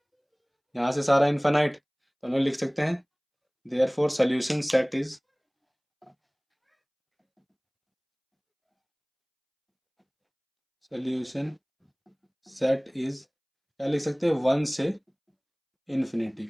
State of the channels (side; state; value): both; identical; correlation 1.00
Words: यहाँ से सारा इन्फानाइट, तो हम लोग लिख सकते हैं therefore solution set is, solution set is क्या लिख सकते हैं, 1 से इन्फिनिटी